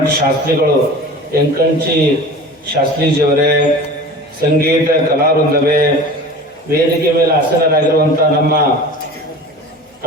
ಶಾಸ್ತ್ರಿಗಳು ಎಂಕಂಚಿ ಶಾಸ್ತ್ರೀಜಿಯವರೇ, ಸಂಗೀತ ಕಲಾವೃಂದವೇ, ವೇದಿಕೆ ಮೇಲೆ ಆಸೀನರಾಗಿರುವಂಥ ನಮ್ಮ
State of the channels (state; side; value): normal; both; correlation 0.38